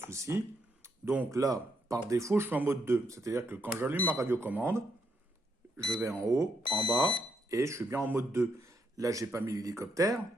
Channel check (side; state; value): both; normal; correlation 0.77